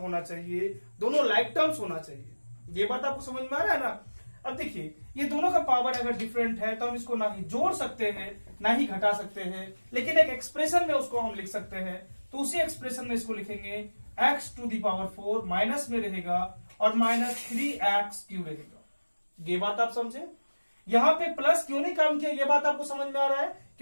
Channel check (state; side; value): inverted; both; correlation -1.00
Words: चाहिए, दोनों लाइक टर्म्स होना चाहिए। ये बात आपको समझ में आ रहा है ना। अब देखिए, ये दोनों का पावर अगर डिफरेंट है तो हम इसको ना ही जोड़ सकते हैं ना ही घटा सकते हैं, लेकिन एक एक्सप्रेशन में उसको हम लिख सकते हैं। तो उसी एक्सप्रेशन में इसको लिखेंगे x to the power 4 minus में रहेगा और माइनस 3x क्यूब रहेगा। ये बात आप समझे। यहाँ पे प्लस क्यों नहीं काम किया, ये बात आपको समझ में आ रहा है,